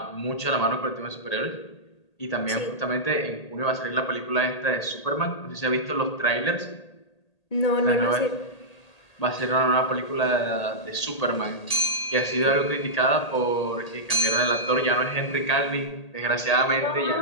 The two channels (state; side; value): late; right; 1.8 ms